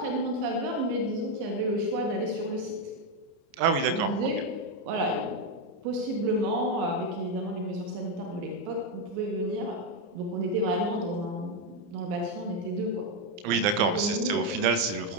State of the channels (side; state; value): left; late; 29 ms